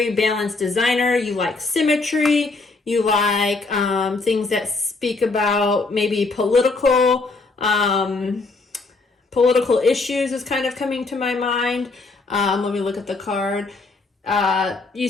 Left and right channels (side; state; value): right; quieter; 3.7 dB